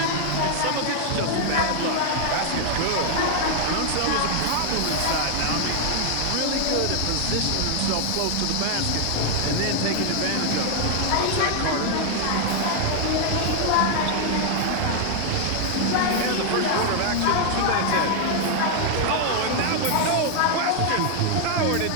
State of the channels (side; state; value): both; different; correlation 0.00